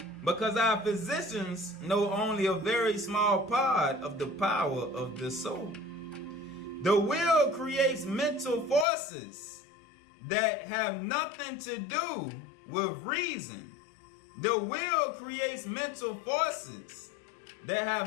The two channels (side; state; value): right; drops out; at 8.8 s